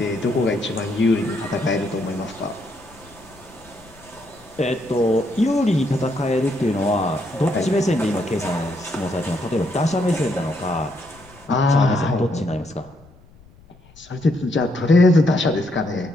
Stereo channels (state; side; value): noise; left; rumble, 26 dB below the sound